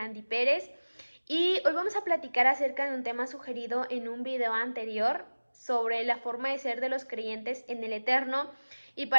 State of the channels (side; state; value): both; inverted; correlation -1.00